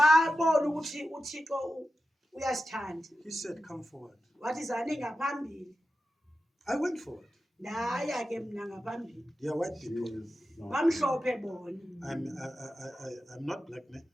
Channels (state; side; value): normal; both; correlation 0.92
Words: ukuthi uThixo uyasithanda. He said, come forward. Wathi zani ngaphambili. I went forward. Ndaya ke mna ngaphambili. They are white people. Bamhlophe bona. I'm not black, man.